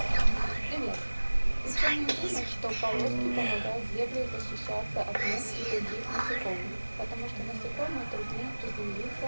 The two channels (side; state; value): both; inverted; correlation -1.00